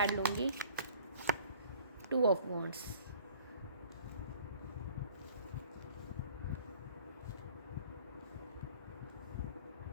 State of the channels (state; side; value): inverted; both; correlation -0.51